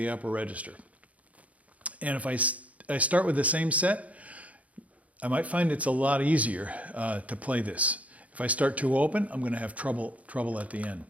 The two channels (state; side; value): late; left; 0.068 ms